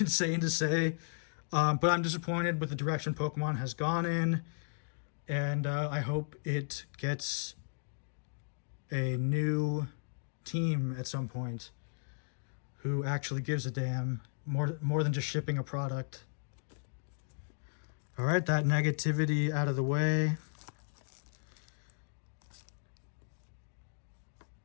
to say. But I'm disappointed with the direction Pokemon has gone in, and I hope it gets a new team at some point who actually gives a damn, more than just shipping a product. All right, that negativity out of the way.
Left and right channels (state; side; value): silent; right; digital silence